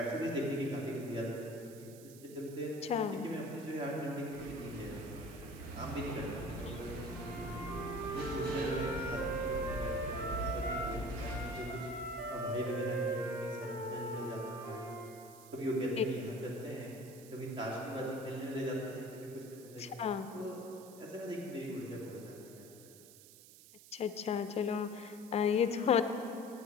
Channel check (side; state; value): right; noise; hiss, 19 dB below the sound